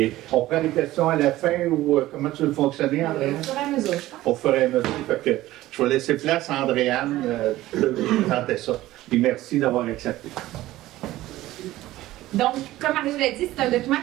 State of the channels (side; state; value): left; quieter; 16.1 dB